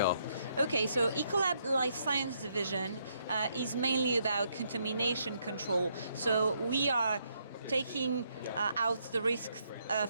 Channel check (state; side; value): inverted; both; correlation -0.75